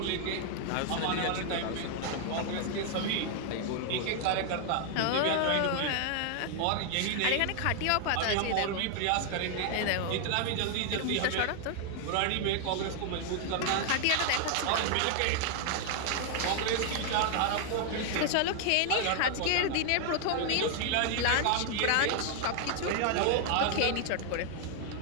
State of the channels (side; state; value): both; different; correlation 0.00